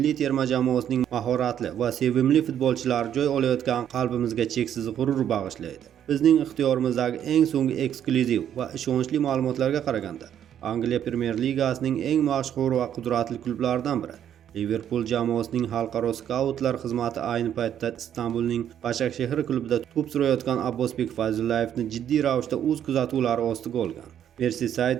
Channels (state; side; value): quieter; left; 9.8 dB